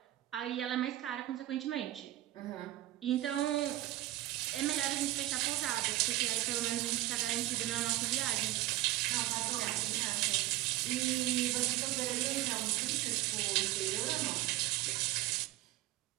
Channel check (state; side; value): quieter; left; 16.1 dB